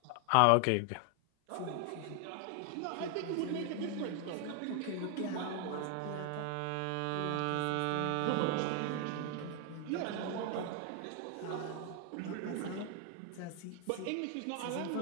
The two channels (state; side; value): different; both; correlation 0.00